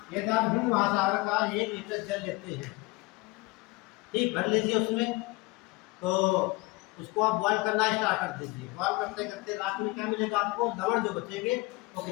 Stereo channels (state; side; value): quieter; right; 22.9 dB